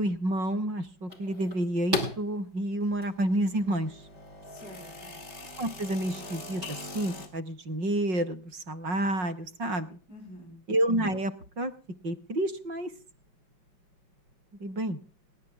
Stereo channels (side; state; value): left; late; 5.2 ms